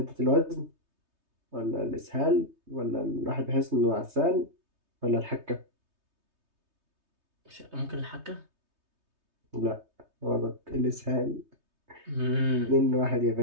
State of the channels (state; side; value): late; left; 3.2 ms